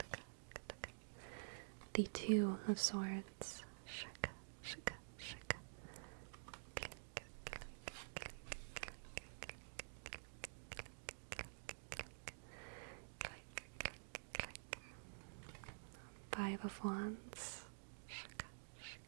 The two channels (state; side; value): silent; left; digital silence